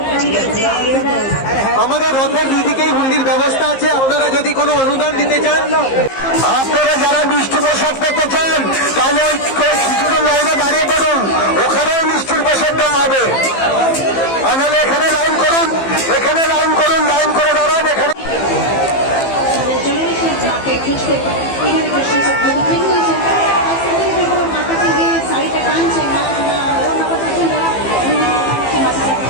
আমাদের রথের দুদিকেই হুন্ডির ব্যবস্থা আছে, আপনারা যদি কোনো অনুদান দিতে চান, আপনারা যারা মিষ্টি প্রসাদ পেতে চান তাহলে ওই খিচুড়ির লাইনে দাঁড়িয়ে পড়ুন, ওখানেও মিষ্টির প্রসাদ দেওয়া হবে, তাহলে এখানে লাইন করুন, এখানে লাইন করুন, লাইন করে দাঁড়ান এখানে।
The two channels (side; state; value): right; late; 15 ms